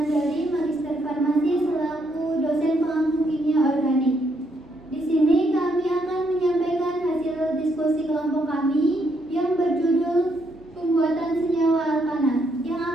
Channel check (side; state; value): both; normal; correlation 0.75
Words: Magister Farmasi selaku dosen pengampu kimia organik. Di sini kami akan menyampaikan hasil diskusi kelompok kami yang berjudul pembuatan senyawa alkana yang